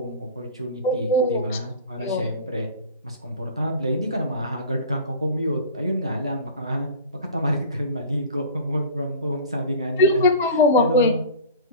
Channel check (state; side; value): inverted; both; correlation -0.36